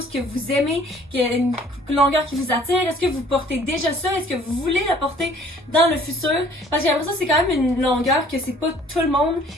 que vous aimez, qu'il y a une longueur qui vous attire? Est-ce que vous portez déjà ça? Est-ce que vous voulez la porter dans le futur? Parce que j'ai l'impression que c'est quand même une longueur que c'est pas tout le monde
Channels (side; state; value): both; normal; correlation 0.55